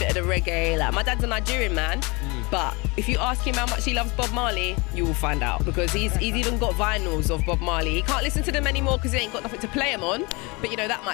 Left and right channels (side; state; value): right; quieter; 26.9 dB